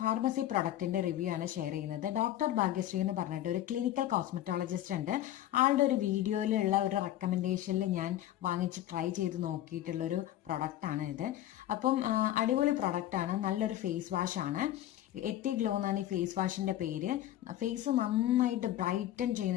പ്രൊഡക്റ്റിന്റെ റിവ്യൂ ആണ് ഷെയർ ചെയ്യുന്നത്. ഡോക്ടർ ഭാഗ്യശ്രീ എന്ന് പറഞ്ഞിട്ട് ഒരു ക്ലിനിക്കൽ കോസ്മെറ്റോളജിസ്റ്റ് ഉണ്ട്. ആളുടെ ഒരു വീഡിയോയിലുള്ള ഒരു റെക്കമെൻഡേഷനിൽ ഞാൻ വാങ്ങിച്ച് ട്രൈ ചെയ്ത് നോക്കിയിട്ടുള്ള ഒരു പ്രൊഡക്റ്റ് ആണ് ഇത്. അപ്പം അടിപൊളി പ്രൊഡക്റ്റ് ആണ്, നല്ലൊരു ഫേസ് വാഷ് ആണ്. എത്തി ഗ്ലോ എന്നാണ് ഈ ഫേസ് വാഷിന്റെ പേര്. ഫേസ് നന്നായിട്ട് ബ്രൈറ്റൻ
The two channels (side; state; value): right; quieter; 13.0 dB